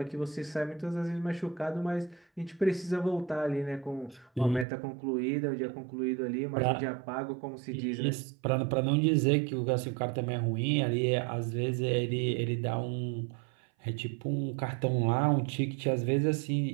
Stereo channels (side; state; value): left; drops out; at 4.7 s